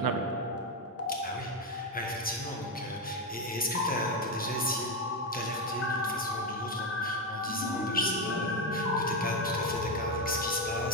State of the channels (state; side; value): normal; both; correlation 0.10